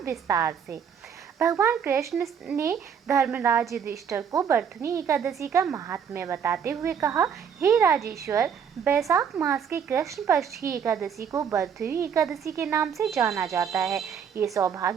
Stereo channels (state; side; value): quieter; left; 7.4 dB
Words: से। भगवान कृष्ण ने धर्मराज युधिष्ठिर को बरथुनी एकादशी का महात्म्य बताते हुए कहा, हे राजेश्वर, वैशाख मास के कृष्ण पक्ष की एकादशी को बरथुनी एकादशी के नाम से जाना जाता है। ये